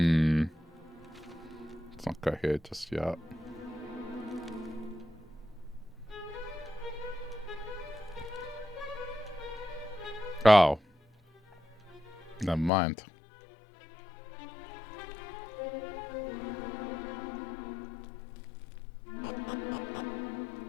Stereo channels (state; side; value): drops out; right; at 12.7 s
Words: Let's not go here just yet. Oh. Never mind.